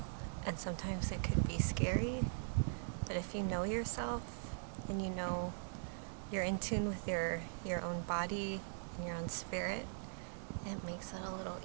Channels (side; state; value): left; silent; digital silence